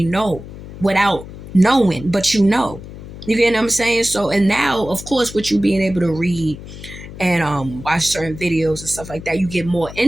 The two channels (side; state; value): left; noise; hum, 14 dB below the sound